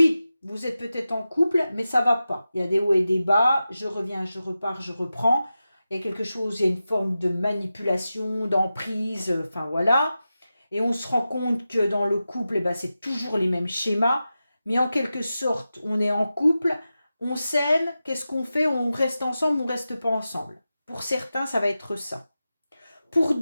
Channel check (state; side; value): inverted; both; correlation -0.93